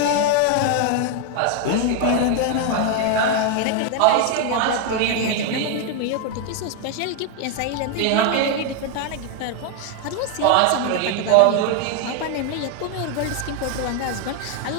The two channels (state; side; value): different; both; correlation 0.01